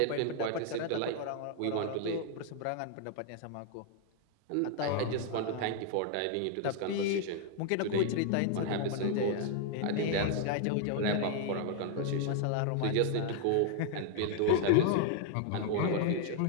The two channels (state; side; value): different; both; correlation 0.00